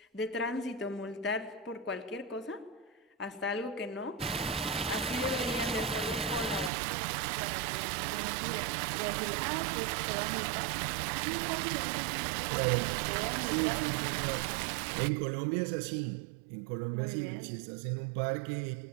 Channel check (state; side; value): drops out; left; at 6.7 s